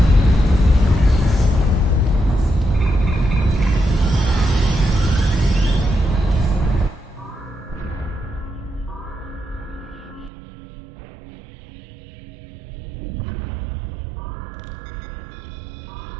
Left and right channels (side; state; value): left; drops out; at 10.3 s